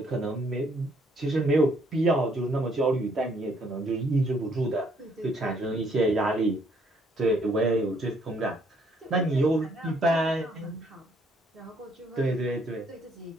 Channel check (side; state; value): both; normal; correlation 0.67